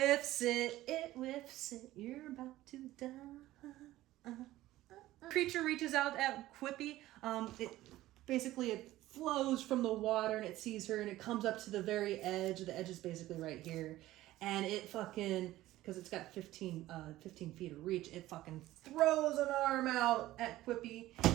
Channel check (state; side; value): quieter; left; 15.9 dB